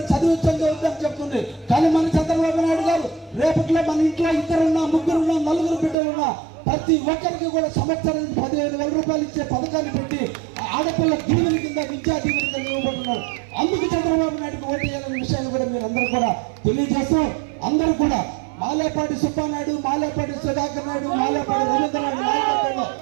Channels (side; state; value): left; drops out; at 6.0 s